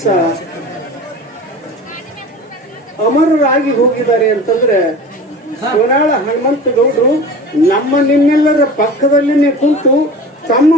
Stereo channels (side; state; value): both; normal; correlation 0.37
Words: ಅಮರರಾಗಿ ಹೋಗಿದ್ದಾರೆ ಅಂತಂದ್ರೆ ಸೋನಾಳ ಹನುಮಂತಗೌಡರು ನಮ್ಮ ನಿಮ್ಮೆಲ್ಲರ ಪಕ್ಕದಲ್ಲಿನೇ ಕುಂತು ತಮ್ಮ